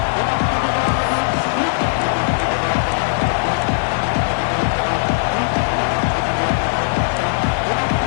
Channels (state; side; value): silent; right; digital silence